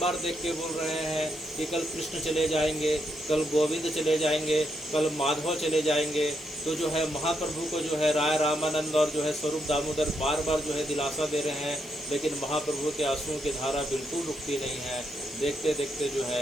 देख के बोल रहे हैं कि कल कृष्ण चले जाएंगे, कल गोविंद चले जाएंगे, कल माधव चले जाएंगे। तो जो है महाप्रभु को जो है राय रामानंद और जो है स्वरूप दामोदर बार बार जो है दिलासा दे रहे हैं, लेकिन महाप्रभु के आंसुओं की धारा बिल्कुल रुकती नहीं है। देखते देखते जो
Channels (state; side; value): normal; both; correlation 0.80